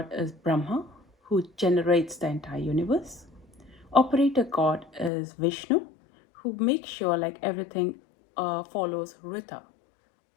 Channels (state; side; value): drops out; right; at 5.1 s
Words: is Brahma, who generates the entire universe. Operator God is Vishnu, who makes sure like everything follows Rita.